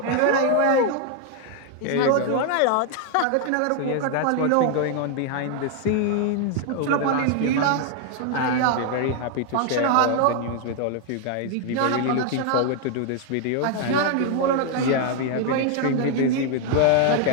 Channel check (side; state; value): both; different; correlation 0.00